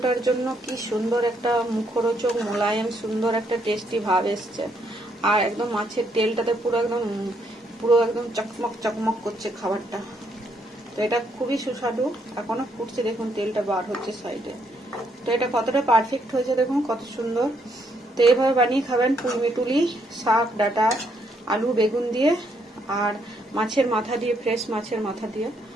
জন্য কি সুন্দর একটা মুখরোচক মোলায়েম সুন্দর একটা টেস্টি ভাব এসছে। আর একদম মাছের তেলটাতে পুরো একদম চকমক চকমক করছে খাবারটা। তো এটা খুবই সুস্বাদু, এখনো ফুটছে, দেখুন তেলটা বার হচ্ছে সাইডে। তো এটা কতটা পারফেক্ট হয়েছে দেখুন, কত সুন্দর। তো এইভাবে বানিয়ে খাবেন পুঁই মিটুলি শাক, ডাঁটা, আলু বেগুন দিয়ে আর মাছের মাথা দিয়ে, ফ্রেশ মাছের মাথা দিয়ে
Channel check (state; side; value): normal; both; correlation 0.73